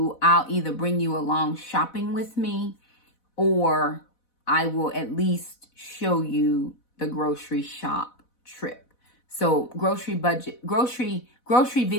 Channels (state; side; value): late; right; 4.0 ms